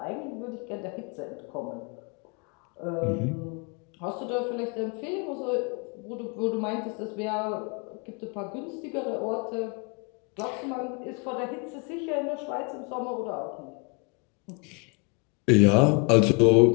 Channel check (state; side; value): quieter; right; 33.3 dB